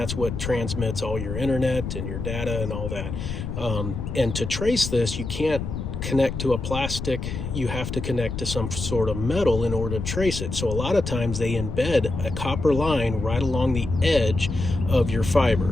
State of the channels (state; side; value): noise; left; rumble, 5 dB below the sound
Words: what transmits all your internet and your data and all that. And to trace this, you can't connect to a plastic, you have to connect to some sort of metal in order to trace it. So a lot of times they embed a copper line right along the edge of your